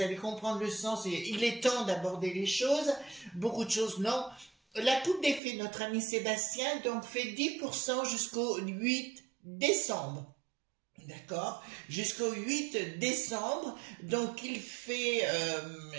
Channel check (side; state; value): left; drops out; at 5.4 s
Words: allez comprendre le sens et il est temps d'aborder les choses. Beaucoup de choses, non. La coupe des fées, notre ami Sébastien, donc fait 10% jusqu'au 8 décembre. D'accord, jusqu'au 8 décembre, donc il fait